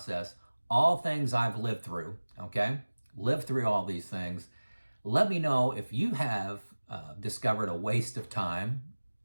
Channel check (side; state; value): both; inverted; correlation -1.00